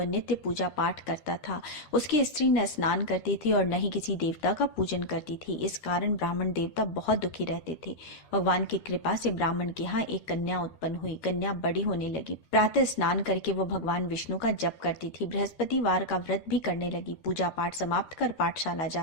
नित्य पूजा पाठ करता था। उसकी स्त्री न स्नान करती थी और न ही किसी देवता का पूजन करती थी। इस कारण ब्राह्मण देवता बहुत दुखी रहते थे। भगवान की कृपा से ब्राह्मण के यहाँ एक कन्या उत्पन्न हुई। कन्या बड़ी होने लगी। प्रातः स्नान करके वह भगवान विष्णु का जप करती थी। बृहस्पतिवार का व्रत भी करने लगी। पूजा पाठ समाप्त कर पाठशाला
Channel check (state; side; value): late; right; 13 ms